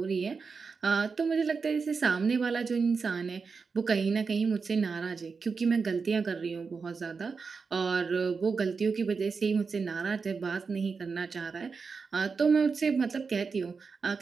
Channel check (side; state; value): left; quieter; 5.0 dB